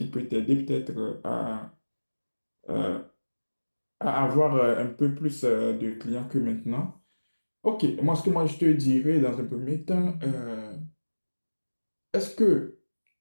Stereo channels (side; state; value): both; inverted; correlation -1.00